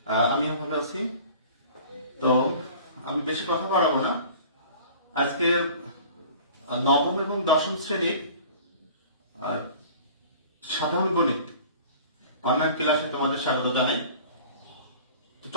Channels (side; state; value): both; inverted; correlation -0.45